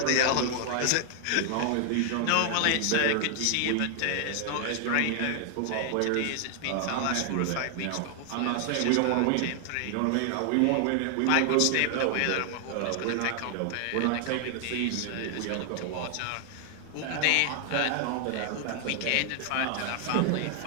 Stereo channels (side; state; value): both; different; correlation 0.00